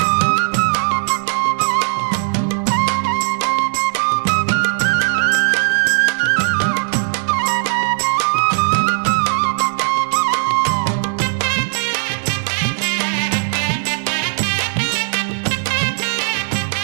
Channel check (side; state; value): left; silent; digital silence